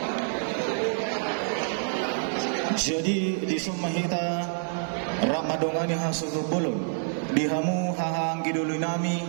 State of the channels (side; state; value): left; silent; digital silence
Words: Jadi di Sumahita Ramadongani hasutu bolon dihamu hahang gidulu nami